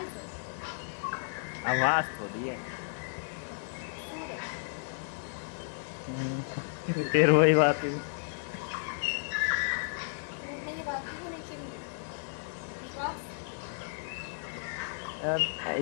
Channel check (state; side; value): silent; right; digital silence